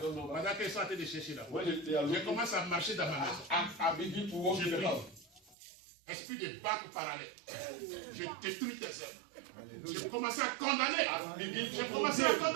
number, pendant qu'ils sont en train de chercher là, when they are je looking, commence à marcher dans ma maison. I begin to walk in the house. Esprit de banque parallèle. Je détruis tes œuvres. J'ai commencé à condamner. J'ai commencé à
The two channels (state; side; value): drops out; left; at 5.6 s